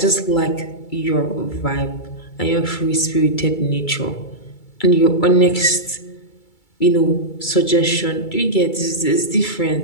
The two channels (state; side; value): late; right; 2.3 ms